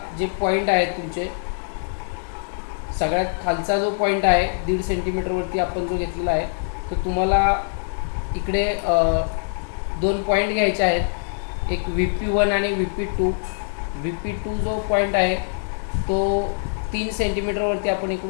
जे पॉईंट आहेत तुमचे, सगळ्यात खालचा जो पॉईंट आहे 1.5 सेंटीमीटरवरती आपण जो घेतलेला आहे, तो तुम्हाला इकडे 2 पॉईंट घ्यायचे आहेत, एक VP1 आणि VP2. VP2 जो पॉईंट आहे तो 3 सेंटीमीटरवरती आपण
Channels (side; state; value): right; silent; digital silence